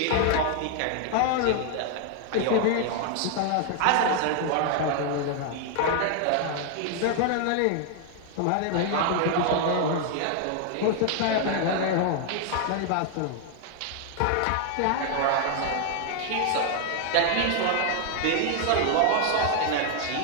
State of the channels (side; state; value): both; different; correlation 0.00